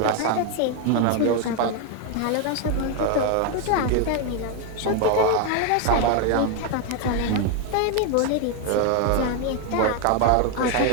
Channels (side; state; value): both; different; correlation 0.01